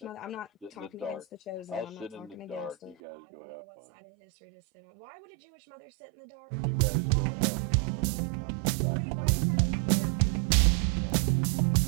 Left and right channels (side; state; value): left; drops out; at 3.0 s